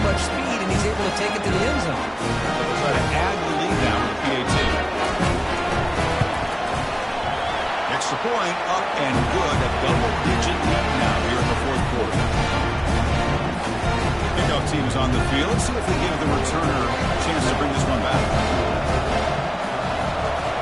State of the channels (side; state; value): both; identical; correlation 1.00